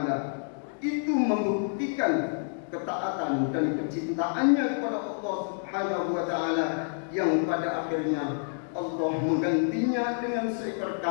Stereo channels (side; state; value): right; silent; digital silence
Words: Itu membuktikan ketaatan dan kecintaannya kepada Allah Subhanahu wa taala, yang pada akhirnya Allah menggantinya dengan seekor